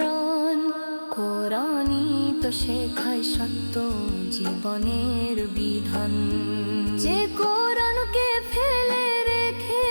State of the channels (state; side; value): inverted; both; correlation -1.00